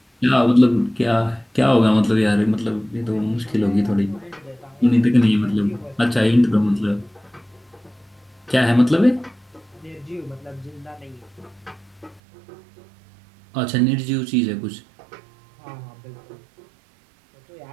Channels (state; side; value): drops out; left; at 12.2 s